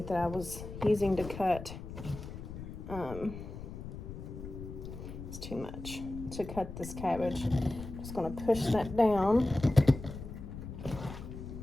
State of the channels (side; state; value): left; noise; rumble, 10 dB below the sound